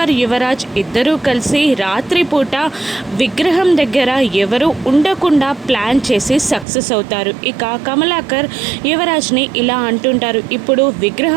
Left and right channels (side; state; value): left; drops out; at 6.7 s